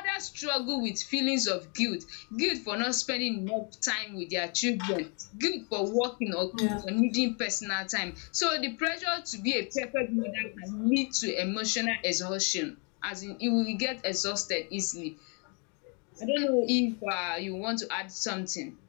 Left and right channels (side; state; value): right; quieter; 36.1 dB